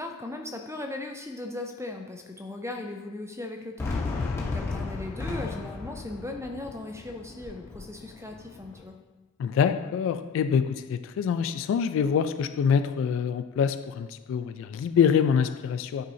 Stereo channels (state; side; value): quieter; right; 6.1 dB